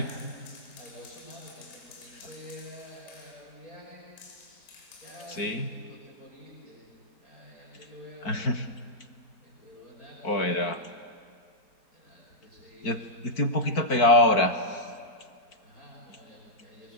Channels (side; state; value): right; late; 4.5 ms